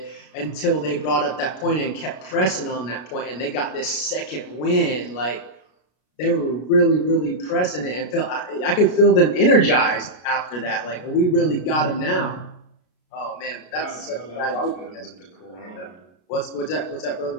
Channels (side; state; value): right; late; 33 ms